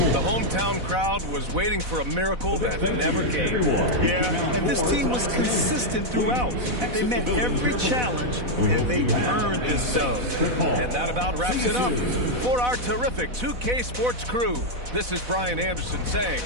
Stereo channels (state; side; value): late; left; 4.1 ms